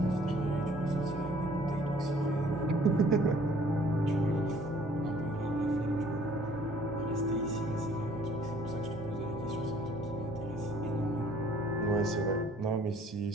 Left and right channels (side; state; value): both; normal; correlation 0.57